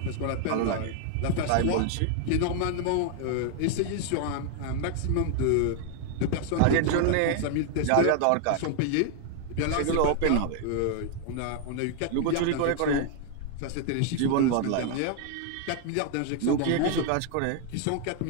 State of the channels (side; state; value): both; different; correlation 0.00